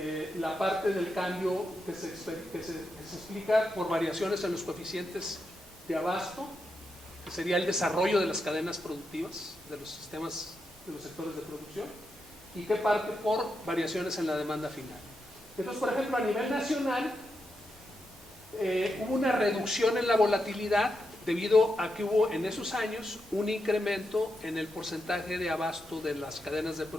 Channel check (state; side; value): normal; both; correlation 0.85